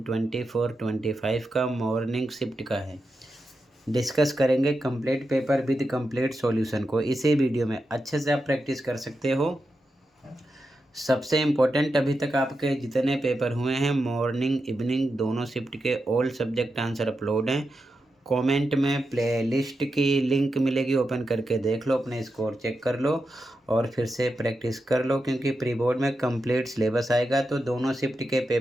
का मॉर्निंग शिफ्ट का है डिस्कस करेंगे complete paper with complete solution को। इसी वीडियो में अच्छे से आप प्रैक्टिस कर सकते हो। सबसे इम्पोर्टेंट अभी तक आपके जितने पेपर हुए हैं मॉर्निंग इवनिंग दोनों शिफ्ट के ऑल सब्जेक्ट आंसर अपलोड हैं। कमेंट में प्लेलिस्ट की लिंक मिलेगी, ओपन करके देख लो, अपने स्कोर चेक कर लो और फिर से प्रैक्टिस कर लो, क्योंकि प्री बोर्ड में कंप्लीट सिलेबस आएगा तो दोनों शिफ्ट के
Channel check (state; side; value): normal; both; correlation 0.88